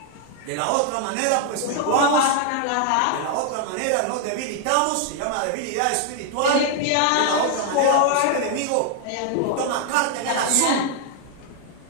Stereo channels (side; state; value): both; different; correlation 0.00